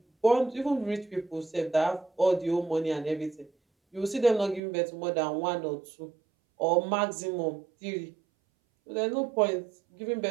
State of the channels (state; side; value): drops out; left; at 4.6 s